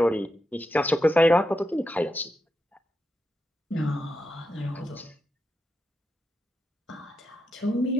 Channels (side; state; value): both; normal; correlation 0.86